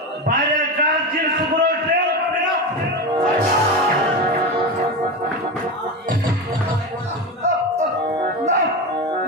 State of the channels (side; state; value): both; normal; correlation 0.21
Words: বাইরের কাজ চির শুক্র টের পাবে না। না